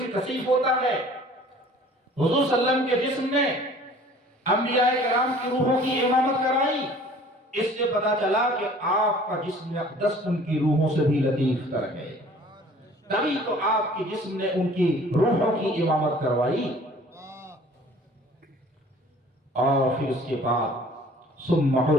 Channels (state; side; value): normal; both; correlation 0.50